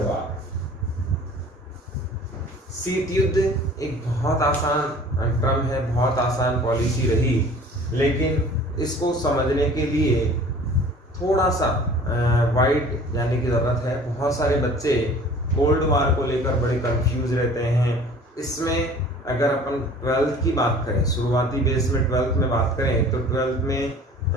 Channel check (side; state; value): both; normal; correlation 0.47